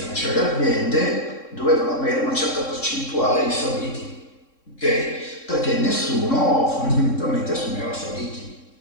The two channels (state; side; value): late; right; 3.7 ms